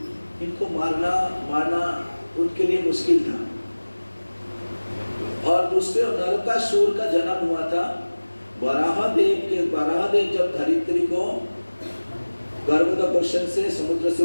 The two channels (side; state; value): both; inverted; correlation -1.00